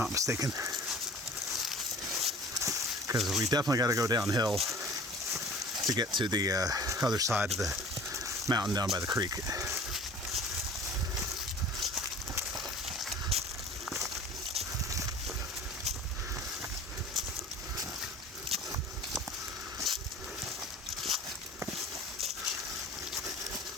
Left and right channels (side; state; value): both; normal; correlation 0.44